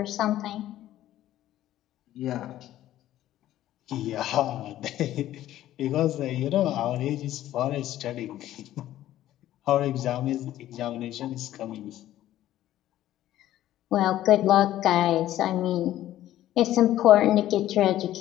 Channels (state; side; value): quieter; right; 13.4 dB